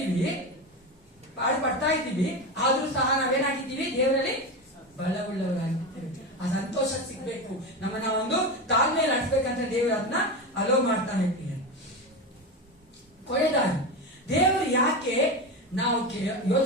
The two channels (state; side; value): normal; both; correlation 0.19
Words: ಪಾಡು ಪಡ್ತಾ ಇದ್ದೀವಿ, ಆದ್ರೂ ಸಹ ನಾವೇನಾಗಿದ್ದೀವಿ, ದೇವರಲ್ಲಿ ಬಲವುಳ್ಳವರಾಗಿದ್ದೇವೆ. ಆ ಸಂತೋಷ ಸಿಗ್ಬೇಕು, ನಮ್ಮನ್ನ ಒಂದು ತಾಳ್ಮೆಯಲ್ಲಿ ನಡೆಸ್ಬೇಕಂತ ದೇವರು ಅದನ್ನ ಅಲೋ ಮಾಡ್ತಾನೆ. ಕೊನೆಯದಾಗಿ ದೇವರು ಯಾಕೆ ನಾವು